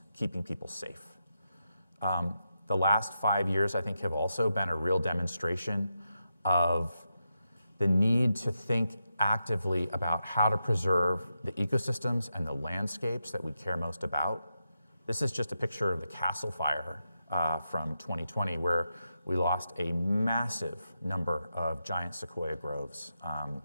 keeping people safe. The last 5 years, I think, have also been a real demonstration of the need to think actively about how to preserve the ecosystems and the landscapes that we care most about. This is just a picture of the Castle Fire from 2020, where we lost a massive number of giant sequoia groves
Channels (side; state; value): both; inverted; correlation -0.87